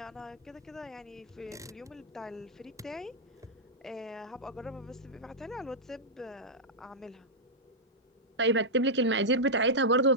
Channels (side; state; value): both; normal; correlation -0.07